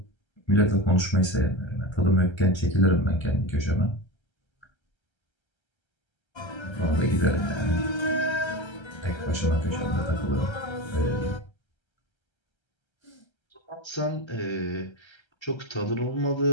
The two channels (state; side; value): late; right; 1.3 ms